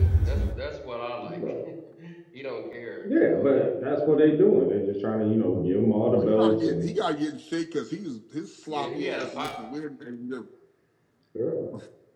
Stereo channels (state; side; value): identical; both; correlation 1.00